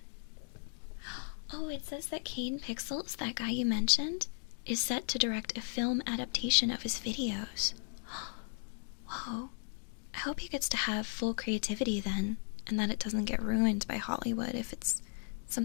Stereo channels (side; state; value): right; silent; 54 dB below the other